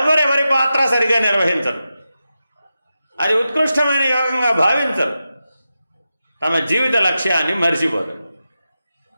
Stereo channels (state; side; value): inverted; both; correlation -0.91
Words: పాత్ర సరిగా నిర్వహించరు, అది ఉత్కృష్టమైన యోగంగా భావించరు, తమ జీవిత లక్ష్యాన్ని మరిచిపోరు.